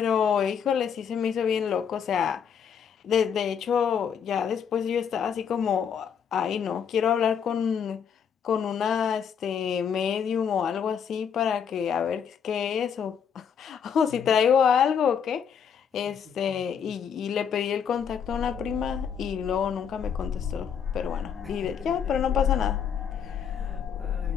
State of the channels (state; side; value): quieter; right; 7.5 dB